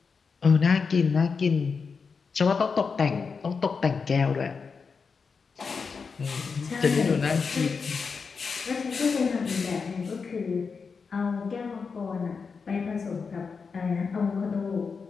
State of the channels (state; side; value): quieter; right; 5.3 dB